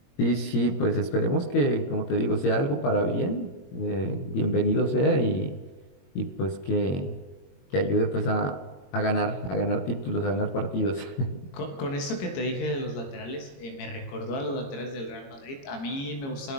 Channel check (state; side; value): late; right; 22 ms